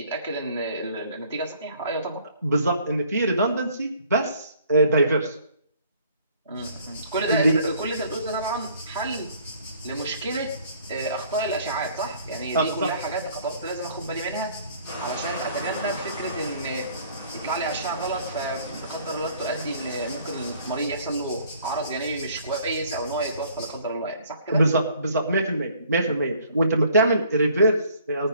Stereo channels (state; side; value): inverted; both; correlation -0.58